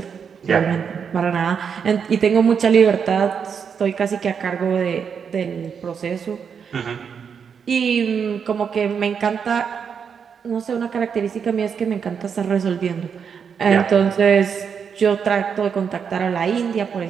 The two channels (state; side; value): quieter; left; 6.8 dB